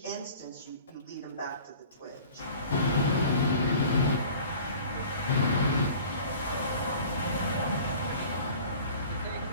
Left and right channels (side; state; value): both; inverted; correlation -0.45